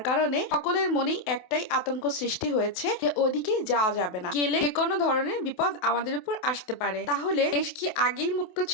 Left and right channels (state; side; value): late; right; 28 ms